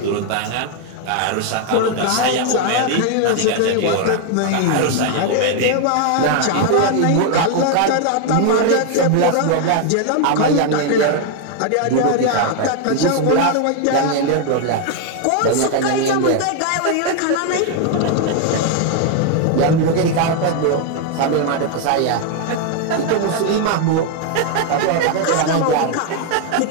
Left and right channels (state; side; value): different; both; correlation 0.01